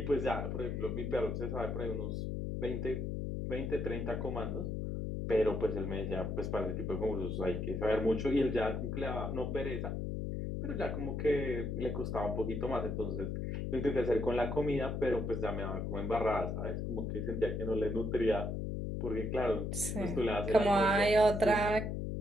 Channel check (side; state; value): left; noise; hum, 2 dB below the sound